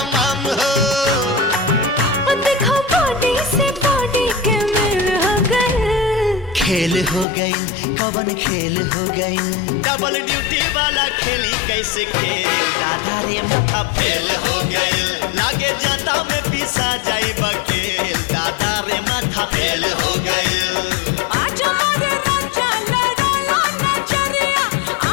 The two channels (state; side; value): drops out; right; at 7.2 s